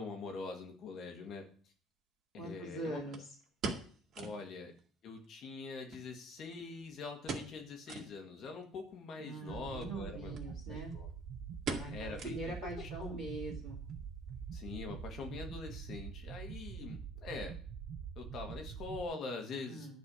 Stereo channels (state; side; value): normal; both; correlation 0.54